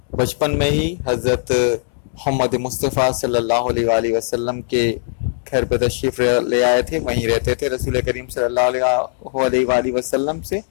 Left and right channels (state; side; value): silent; right; digital silence